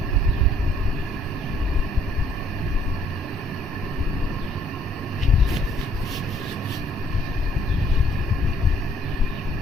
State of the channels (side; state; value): both; normal; correlation 0.63